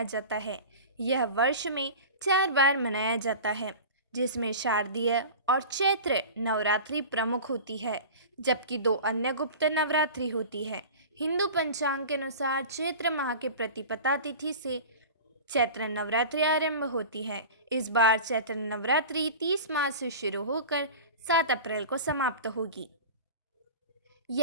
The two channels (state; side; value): inverted; both; correlation -0.35